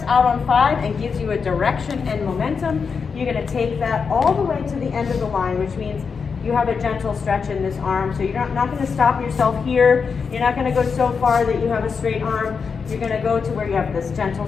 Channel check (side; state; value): right; quieter; 5.6 dB